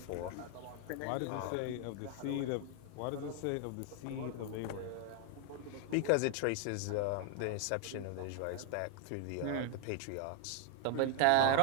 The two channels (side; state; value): both; different; correlation 0.00